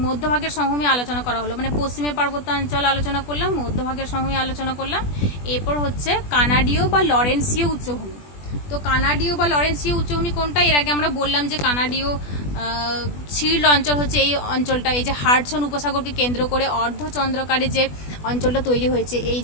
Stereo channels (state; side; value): late; right; 20 ms